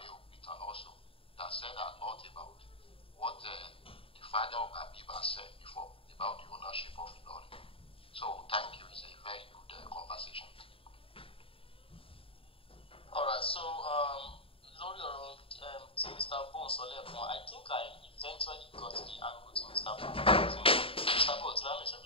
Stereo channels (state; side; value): late; right; 0.27 ms